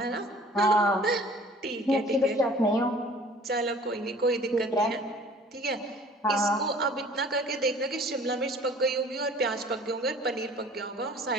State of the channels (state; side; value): normal; both; correlation 0.50